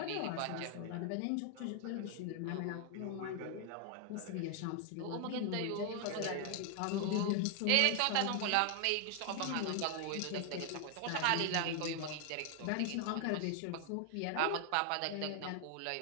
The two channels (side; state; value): both; different; correlation 0.00